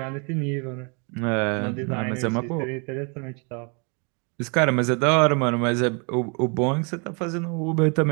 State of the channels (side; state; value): left; quieter; 34.7 dB